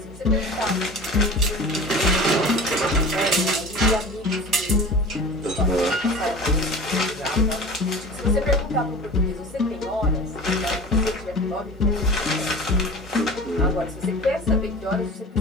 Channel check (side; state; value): both; normal; correlation 0.37